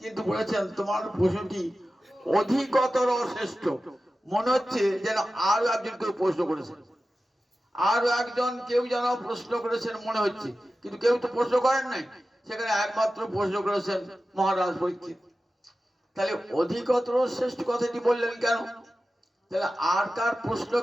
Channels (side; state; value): both; normal; correlation 0.94